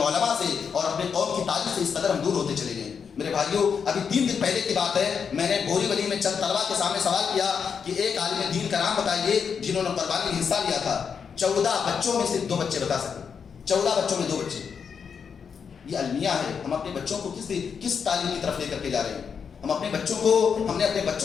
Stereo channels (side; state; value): right; quieter; 6.5 dB